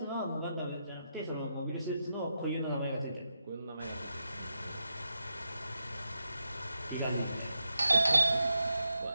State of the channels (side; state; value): both; inverted; correlation -0.86